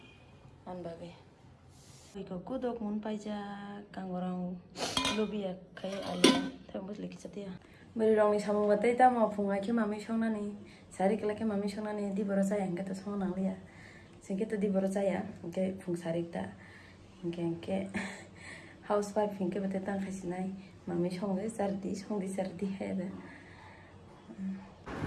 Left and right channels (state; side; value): identical; both; correlation 1.00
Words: an bagai. Iko kudok mun paija kangorang lobia kai ali thambus leki chatia. Beri rong ni samung batai ta ma phungai ke mami songna ni sari kala ke mami songna ni di borosa yang kata song nang lia singke to di borosa ya ke phung sari ta ke housewife hinke batai tang khasinai mami songai sardi he da